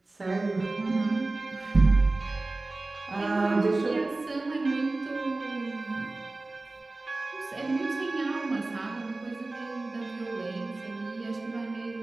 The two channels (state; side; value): quieter; left; 3.1 dB